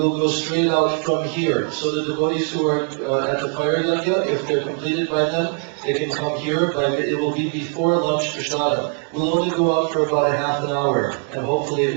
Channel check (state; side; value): quieter; left; 39.8 dB